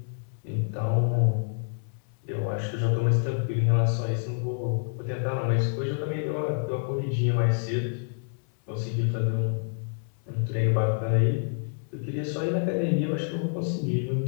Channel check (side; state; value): right; silent; digital silence